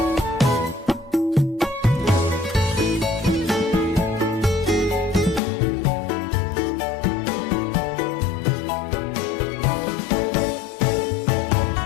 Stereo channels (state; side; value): drops out; right; at 5.4 s